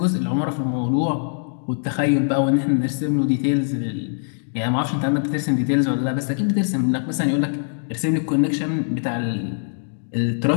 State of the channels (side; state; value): right; silent; digital silence